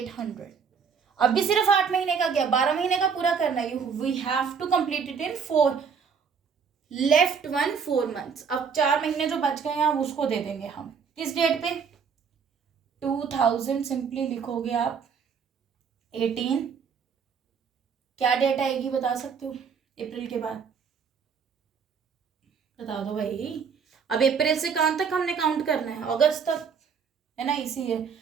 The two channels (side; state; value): left; quieter; 6.3 dB